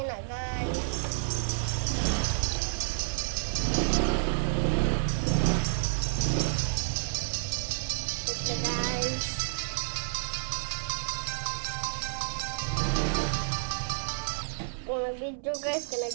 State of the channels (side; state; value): left; silent; 58 dB below the other